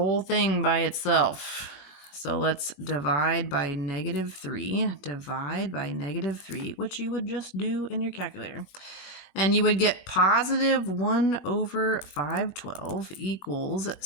thing by itself. So let's divide by negative 3. Divide by negative 3, which you would just do in your calculator. And you would get positive 1 over 512 equals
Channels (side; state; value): right; late; 21 ms